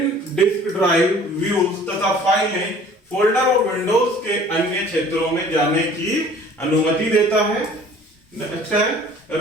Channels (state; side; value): normal; both; correlation 0.50